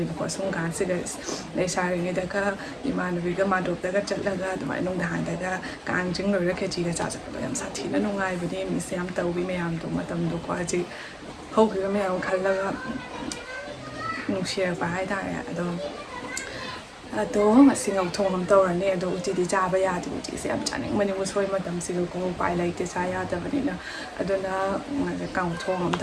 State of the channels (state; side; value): identical; both; correlation 1.00